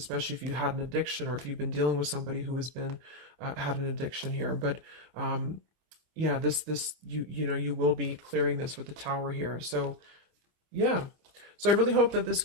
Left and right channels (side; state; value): left; late; 25 ms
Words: if you had an addiction, or if you've been dealing with somebody who has been had an addiction here. But yeah, this you will be clearing this with the Tower here. So yeah. So I really hope that this